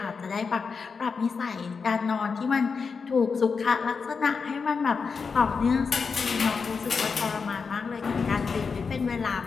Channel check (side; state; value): right; quieter; 5.2 dB